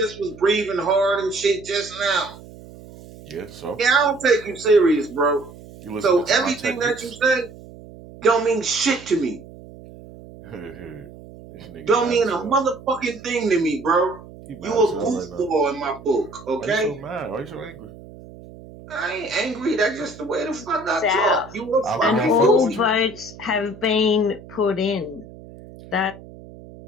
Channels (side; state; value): right; noise; hum, 18 dB below the sound